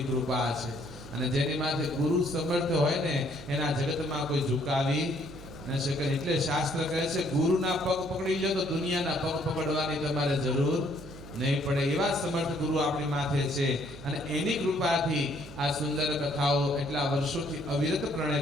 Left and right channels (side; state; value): right; noise; hum, 16 dB below the sound